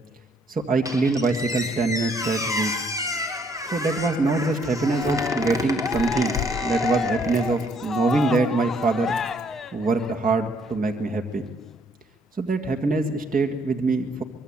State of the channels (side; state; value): both; normal; correlation 0.67